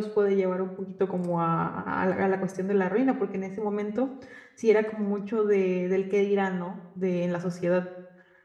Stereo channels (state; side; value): identical; both; correlation 1.00